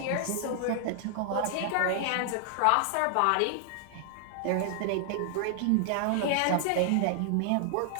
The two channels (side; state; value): both; different; correlation 0.00